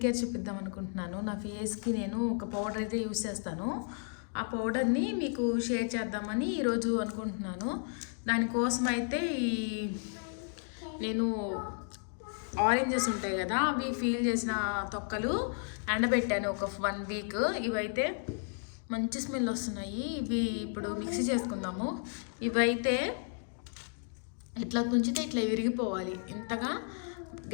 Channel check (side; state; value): right; silent; 56 dB below the other